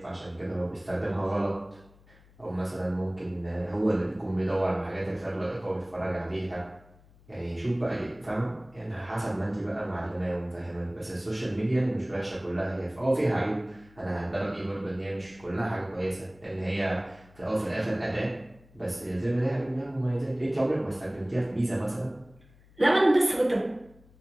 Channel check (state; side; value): noise; left; hum, 26 dB below the sound